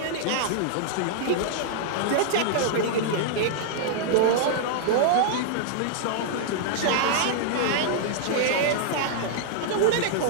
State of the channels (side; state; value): both; different; correlation -0.01